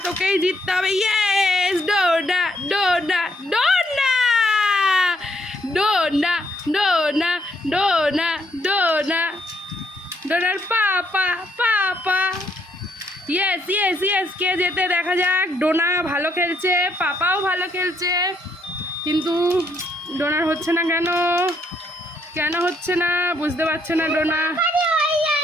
তোকেই জিততে হবে। ইয়েস ডোনা। ডোনা। ডোনা। ডোনা। ডোনা। ডোনা। ডোনা। ডোনার papa. Papa. Yes yes yes. কে যেতে দেখা যাক। ডোনা ভালো খেলছে, পাপাও ভালো খেলছে, কিন্তু ডোনার হচ্ছে না কেন? কেন হচ্ছে না বুঝতে পারছে না ডোনা।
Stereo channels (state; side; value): normal; both; correlation 0.72